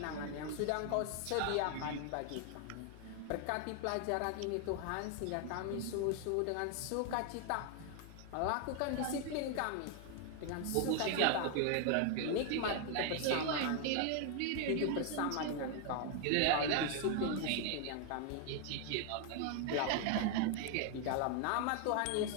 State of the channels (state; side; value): different; both; correlation 0.00